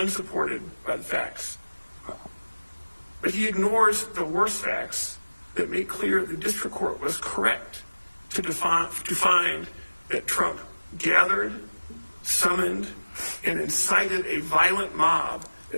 by the facts. But he ignores the worst facts that make clear the district court was correct to find that Trump gathered, summoned, and incited a violent mob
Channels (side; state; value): both; inverted; correlation -1.00